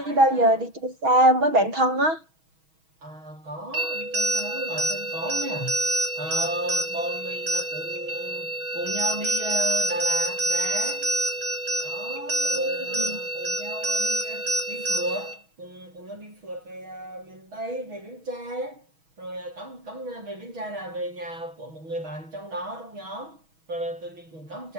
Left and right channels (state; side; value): late; left; 6.3 ms